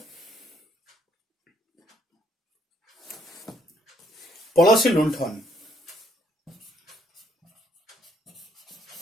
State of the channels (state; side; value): normal; both; correlation 0.69